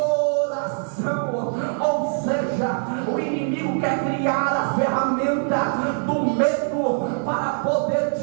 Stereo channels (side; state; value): left; silent; 56 dB below the other